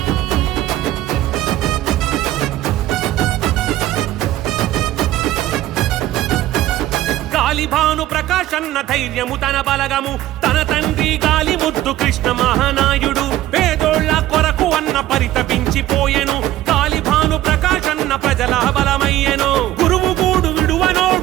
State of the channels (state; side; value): quieter; left; 14.4 dB